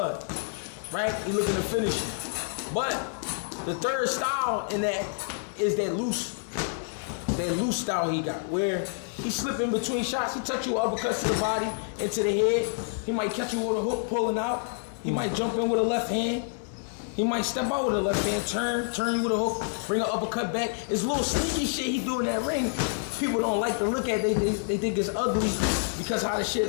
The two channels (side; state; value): right; silent; digital silence